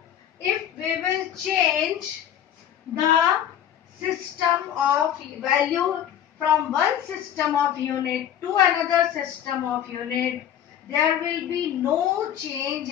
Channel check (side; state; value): right; quieter; 10.2 dB